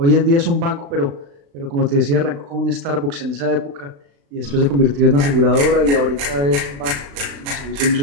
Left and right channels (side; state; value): left; late; 35 ms